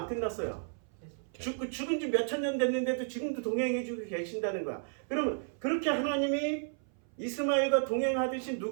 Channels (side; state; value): left; silent; 56 dB below the other